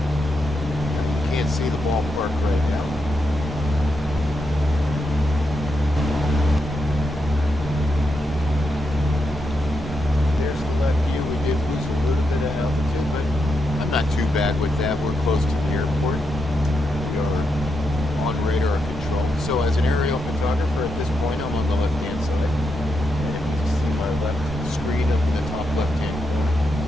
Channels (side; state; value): both; normal; correlation 0.83